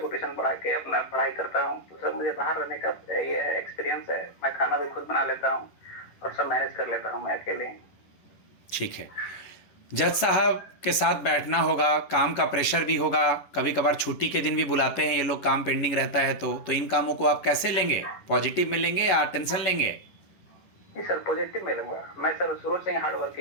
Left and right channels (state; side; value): late; right; 11 ms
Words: ट्यूशन पढ़ा के अपना पढ़ाई करता हूँ। तो सर मुझे बाहर रहने का ये एक्सपीरियंस है, मैं खाना भी खुद बना लेता हूँ और सब मैनेज कर लेता हूँ मैं अकेले। ठीक है, जज साहब के साथ बैठना होगा, काम का प्रेशर भी होगा, कभी कभार छुट्टी के दिन भी बुलाते हैं ये लोग, काम पेंडिंग रहता है तो इन कामों को आप कैसे लेंगे? पॉजिटिव में लेंगे या टेंशन लेंगे? जी सर, पॉजिटिव में लूंगा। मैं सर शुरू से ही हार्ड